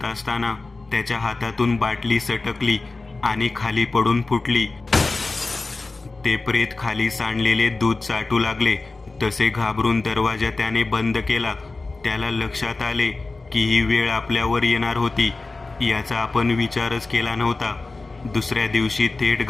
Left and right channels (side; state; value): right; quieter; 3.6 dB